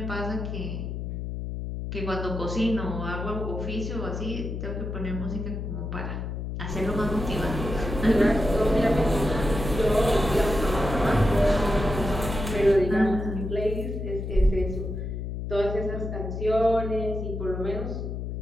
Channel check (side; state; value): left; noise; hum, 5 dB below the sound